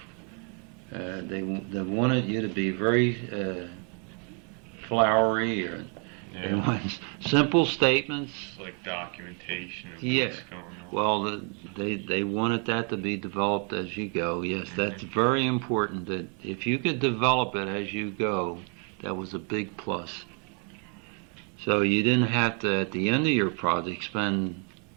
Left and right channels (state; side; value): quieter; left; 38.4 dB